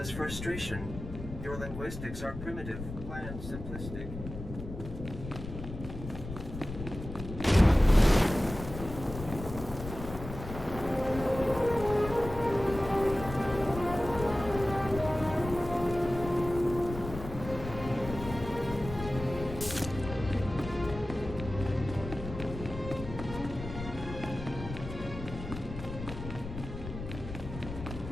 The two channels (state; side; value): noise; left; rumble, 9 dB below the sound